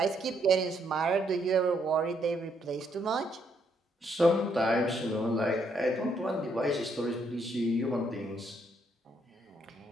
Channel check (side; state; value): both; normal; correlation 0.73